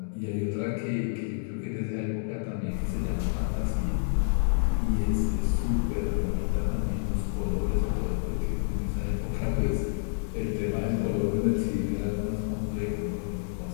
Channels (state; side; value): silent; right; digital silence